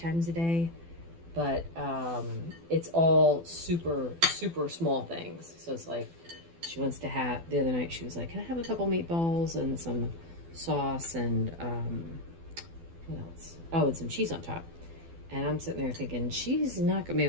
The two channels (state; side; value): late; left; 12 ms